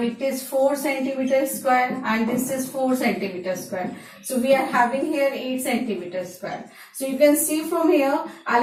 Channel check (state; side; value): identical; both; correlation 1.00